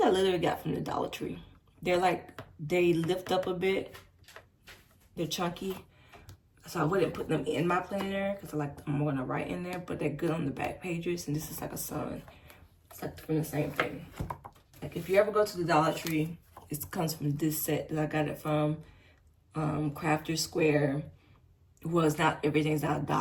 I literally got from the Dollar Tree. They're like, they lift up a bit. They're chunky. So I wouldn't put them in my planner because I'm going to write in there. But they're good on the back pages. And this is like a sun. It's like from the same thing. Like if you ever go to the Dollar Tree, it comes from this set that I got it from Crafter Square. Was not, everything's not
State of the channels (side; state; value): both; identical; correlation 1.00